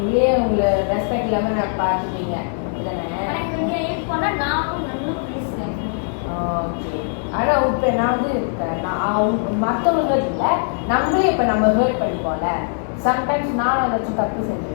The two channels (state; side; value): silent; right; digital silence